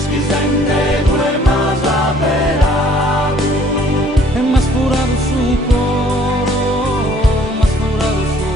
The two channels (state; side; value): normal; both; correlation 0.58